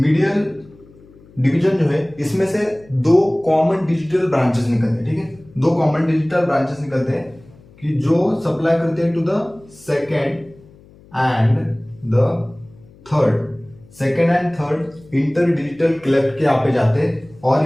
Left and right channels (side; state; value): left; noise; hum, 25 dB below the sound